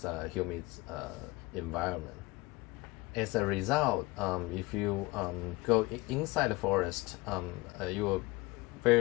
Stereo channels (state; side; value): quieter; right; 22.2 dB